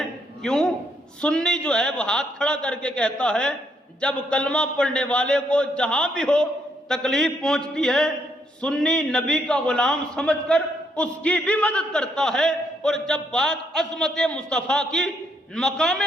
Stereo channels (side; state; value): both; normal; correlation 0.74